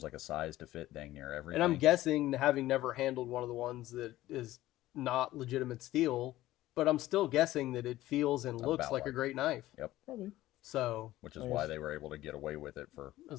like a size to fit dang near everything. And I'm guessing, having never handled one of the ones that is not legitimate steel, but I'm still guessing that it feels and looks like a great knife. Yep. Probably. So, which is why they were able to get away with it for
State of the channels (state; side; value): quieter; right; 15.7 dB